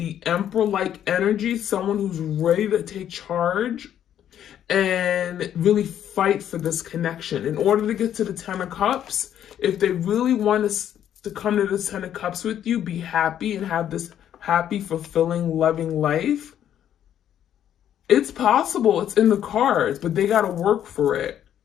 Emperor-like energy, someone who's ready to take charge and really fight for this connection. In order to get to the Ten of Cups, if they really want to come to the Ten of Cups with you, be happy and have this happy, fulfilling, loving life, it's possible. It's in the cards, but they got to work for it.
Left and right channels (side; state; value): right; quieter; 10.3 dB